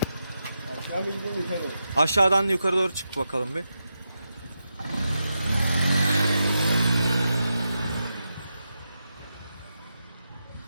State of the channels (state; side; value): inverted; both; correlation -0.87